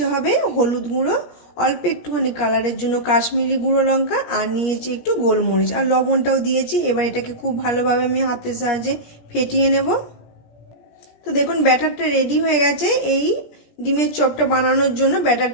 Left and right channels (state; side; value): late; right; 17 ms